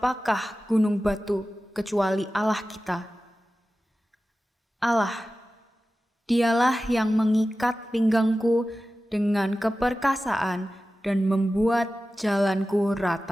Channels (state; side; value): normal; both; correlation 0.95